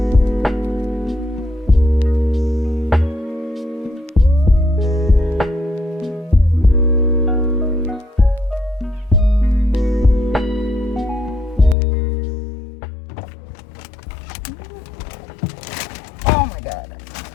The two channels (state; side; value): drops out; right; at 11.8 s